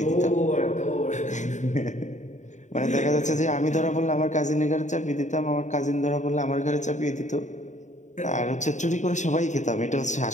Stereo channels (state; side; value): late; right; 0.35 ms